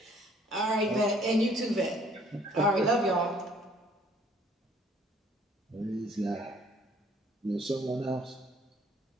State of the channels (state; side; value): normal; both; correlation 0.60